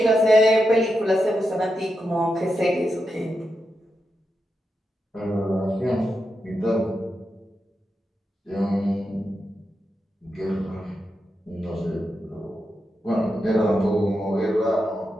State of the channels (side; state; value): both; normal; correlation 0.87